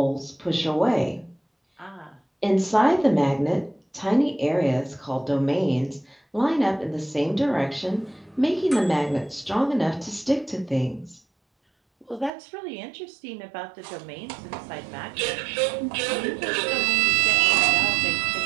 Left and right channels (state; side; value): drops out; left; at 12.3 s